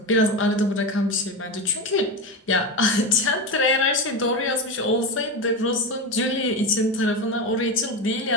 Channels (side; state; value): both; normal; correlation 0.19